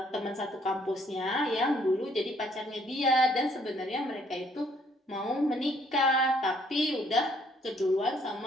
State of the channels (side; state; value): both; normal; correlation 0.65